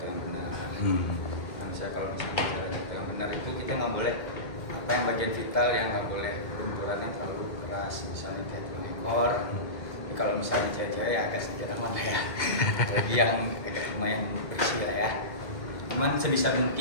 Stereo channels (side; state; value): right; late; 2.0 ms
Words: yang benar. Nah, misalnya kalau misalnya cara jatuh yang benar itu kita nggak boleh apa yang bagian vital yang nggak boleh benturannya terlalu keras, misalnya kayak tulang ekor. Kalau misalnya cewek-cewek ya agak sedikit aman lah ya. Lagi yang agak lumayan bersih lah ya. Cuman sebisa